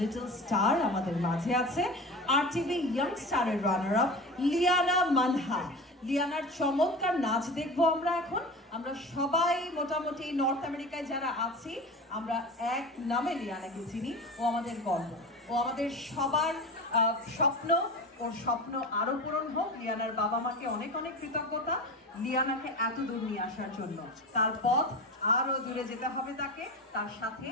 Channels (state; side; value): normal; both; correlation 0.30